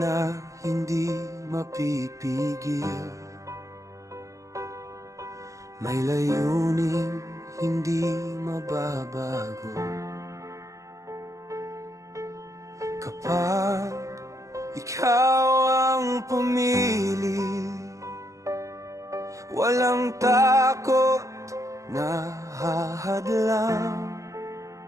hindi mapipigil, may layuning hindi mababago. Kapag ikaw ang pumili, walang takot na hahadlang.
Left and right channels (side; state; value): left; late; 0.16 ms